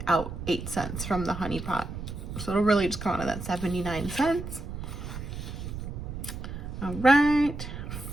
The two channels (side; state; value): right; noise; rumble, 8 dB below the sound